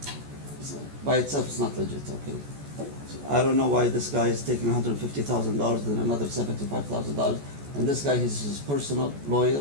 by itself is not legit. I don't know why this guy is taking $150,000 and another $75,000, and this guy is his personal lawyer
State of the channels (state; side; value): late; left; 14 ms